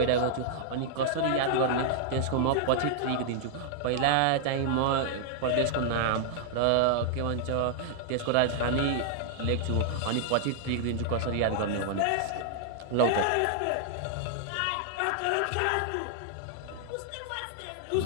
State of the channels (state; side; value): different; both; correlation -0.01